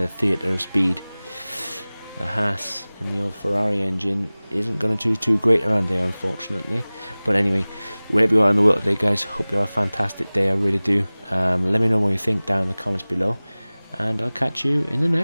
theatre of speed, the HAAS and the old Ferrari engine isn't going to do too great around there, unfortunately. But anyway, wherever you are in the world today, guys, hope you have a fantastic day. I really do. Let me know what you think down in the comments below, and I'll catch you in the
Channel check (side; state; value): both; inverted; correlation -0.99